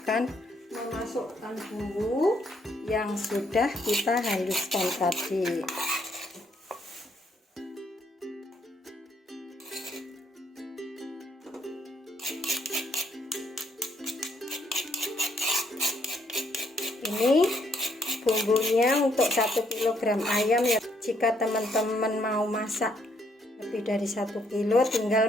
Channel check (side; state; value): both; normal; correlation 0.71